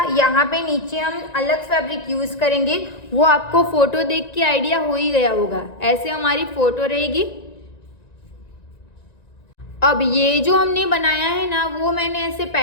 यहाँ पे नीचे हम अलग फैब्रिक यूज़ करेंगे, वो आपको फोटो देख के आइडिया हो ही गया होगा। ऐसे हमारी फोटो रहेगी। अब ये जो हमने बनाया है ना वो मैंने ऐसे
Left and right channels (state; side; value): late; right; 1.9 ms